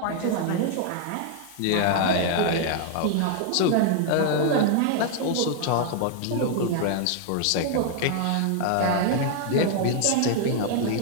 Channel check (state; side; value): different; both; correlation 0.00